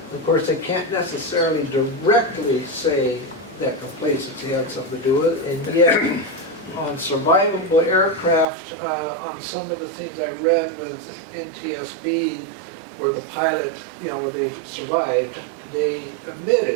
Of course, they can't necessarily directly say that complacency had something to do with it, and yet on survivable aircraft, on some of the things I read with NTSB, where the pilot, you know, where they survived, they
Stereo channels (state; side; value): drops out; left; at 8.5 s